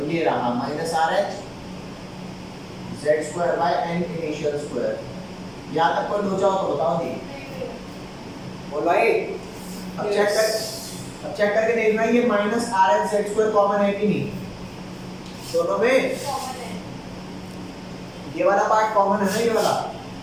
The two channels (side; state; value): both; identical; correlation 1.00